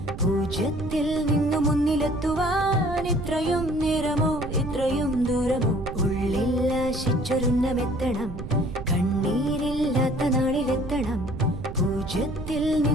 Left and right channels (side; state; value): right; noise; rumble, 9 dB below the sound